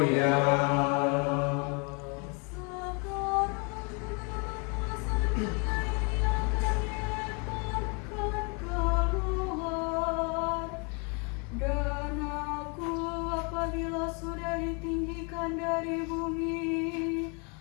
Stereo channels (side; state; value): right; quieter; 34.1 dB